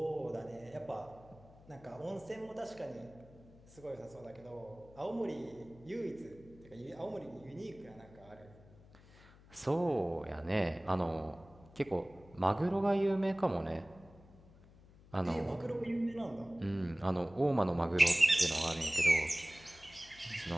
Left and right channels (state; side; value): noise; left; hum, 23 dB below the sound